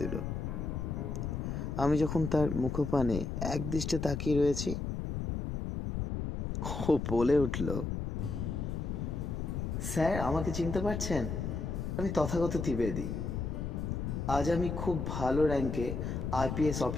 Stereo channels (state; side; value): noise; left; rumble, 3 dB below the sound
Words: দিল। আমি যখন তার মুখপানে এক দৃষ্টে তাকিয়ে রয়েছি, ও বলে উঠল, স্যার, আমাকে চিনতে পারছেন? আমি তথাগত ত্রিবেদী। আজ আমি খুব ভালো র্যাঙ্কে আইপিএস